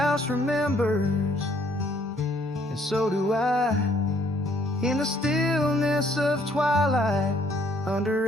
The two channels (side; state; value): both; normal; correlation 0.64